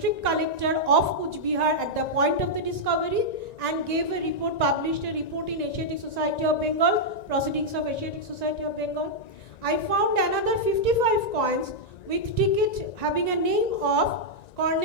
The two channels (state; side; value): late; right; 1.9 ms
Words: collector of Kuch Bihar at the point of the discovery, and gave a report, published a report in Asiatic Society of Bengal, Proceedings of Asiatic Society of Bengal. I found another 55 coins with ticket having a name of